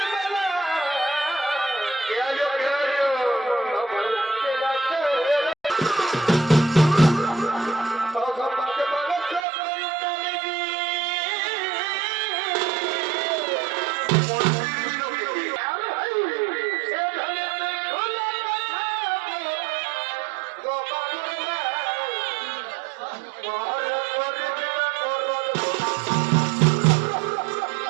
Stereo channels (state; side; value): drops out; left; at 9.5 s